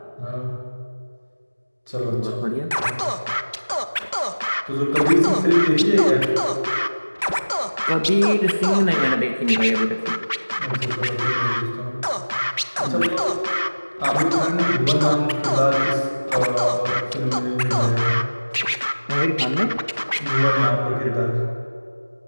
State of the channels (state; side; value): inverted; both; correlation -1.00